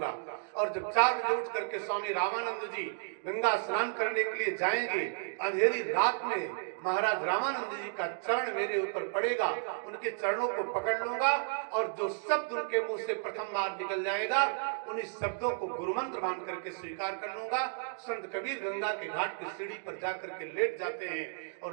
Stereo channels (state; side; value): silent; left; digital silence